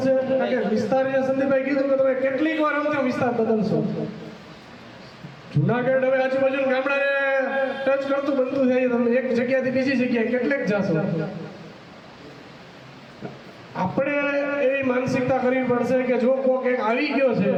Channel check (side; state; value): both; identical; correlation 1.00